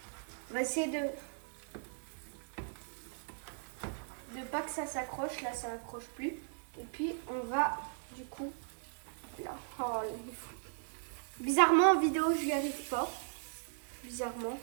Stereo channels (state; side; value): silent; left; digital silence